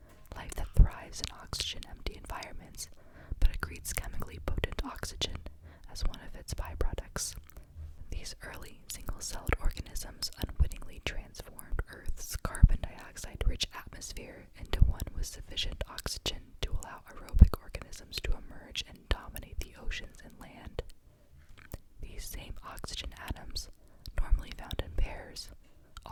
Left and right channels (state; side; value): identical; both; correlation 1.00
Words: life that thrives in oxygen-empty environments, but accretes chemically potent oxygen as one of its byproducts. These early single-celled organisms unwittingly transformed Earth's carbon dioxide-rich atmosphere into one with sufficient oxygen to allow aerobic organisms to emerge and dominate the oceans and land. These same oxygen atoms, normally found in pairs,